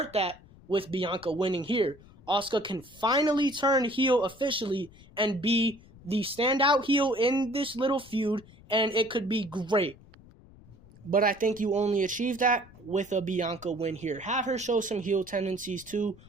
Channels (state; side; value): noise; left; rumble, 23 dB below the sound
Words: that with Bianca winning here. Asuka can finally turn heel officially and be the standout heel in this little feud, and it could be great. But I think you only achieve that with a Bianca win here. Have her show some heel tendencies too.